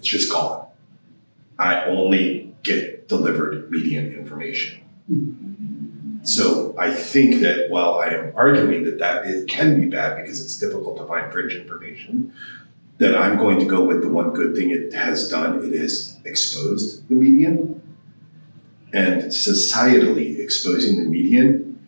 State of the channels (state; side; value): inverted; both; correlation -1.00